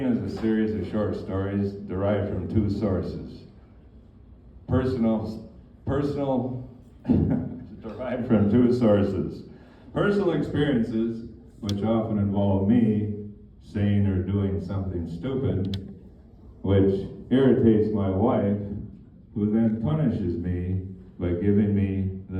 is a series of short stories derived from two sources. Derived from two sources. Personal experiences, which often involve me saying or doing something stupid, which irritates my wife, who then punishes me by giving me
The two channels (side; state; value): both; identical; correlation 1.00